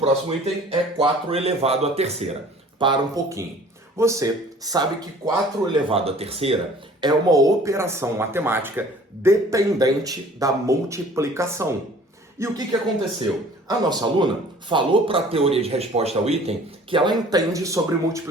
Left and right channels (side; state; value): both; normal; correlation 0.50